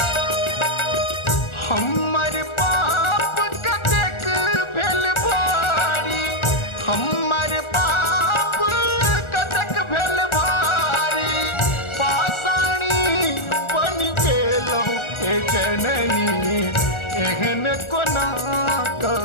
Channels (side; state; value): right; late; 1.4 ms